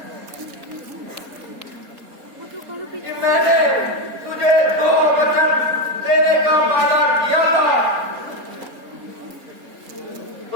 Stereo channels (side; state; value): left; late; 3.9 ms